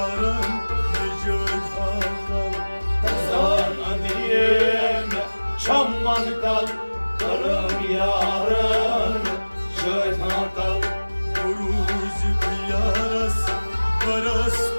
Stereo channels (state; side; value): inverted; both; correlation -1.00